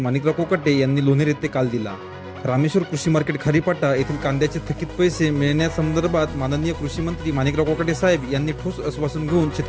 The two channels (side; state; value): both; identical; correlation 1.00